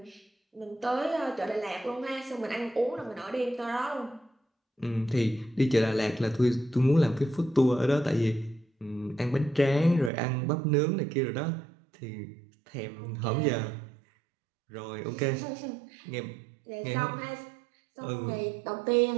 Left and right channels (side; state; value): left; drops out; at 10.1 s